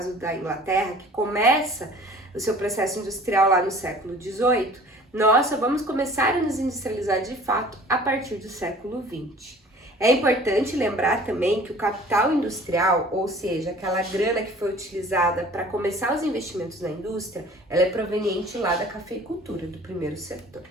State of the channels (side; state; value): both; normal; correlation 0.48